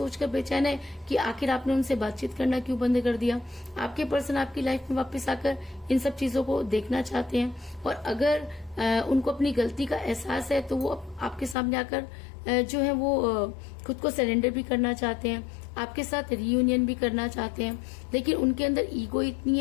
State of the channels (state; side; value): drops out; right; at 11.6 s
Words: बेचैन है कि आखिर आपने उनसे बातचीत करना क्यों बंद कर दिया। आपके पर्सन आपकी लाइफ में वापस आकर इन सब चीजों को देखना चाहते हैं और अगर उनको अपनी गलती का एहसास है तो वो आपके सामने आकर जो है वो खुद को सरेंडर भी करना चाहते हैं, आपके साथ रियूनियन भी करना चाहते हैं। लेकिन उनके अंदर ईगो इतनी